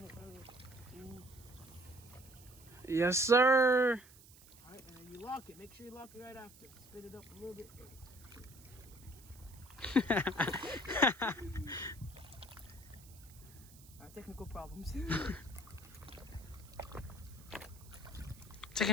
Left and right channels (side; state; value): right; noise; hiss, 22 dB below the sound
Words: it. Yes, sir. Alright, and then you lock it. Make sure you lock it right after. Spit it up a little bit. Alright, technical problems.